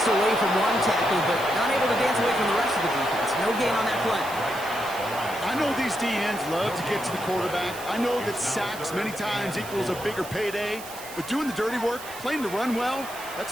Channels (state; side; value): noise; right; hiss, 14 dB below the sound